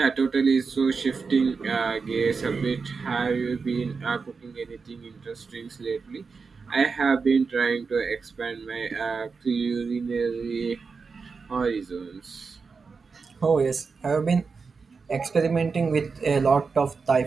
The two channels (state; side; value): quieter; left; 4.9 dB